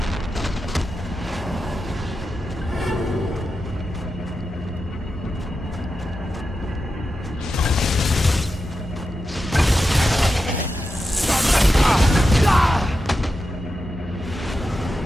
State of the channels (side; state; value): both; normal; correlation 0.90